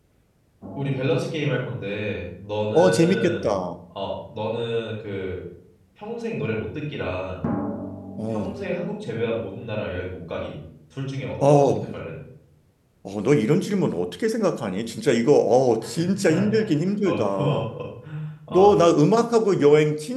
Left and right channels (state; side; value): identical; both; correlation 1.00